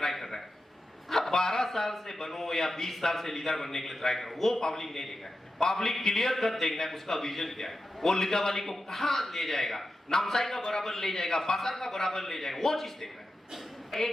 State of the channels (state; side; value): normal; both; correlation 0.90